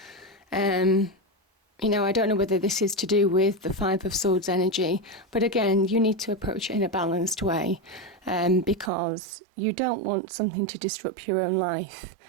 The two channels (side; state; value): left; drops out; at 8.9 s